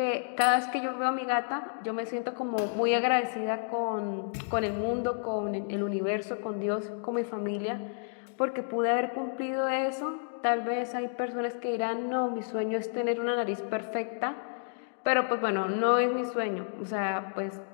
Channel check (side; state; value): right; silent; digital silence